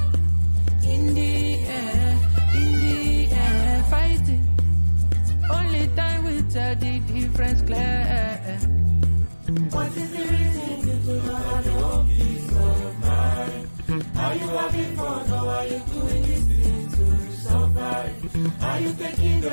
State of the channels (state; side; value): inverted; both; correlation -1.00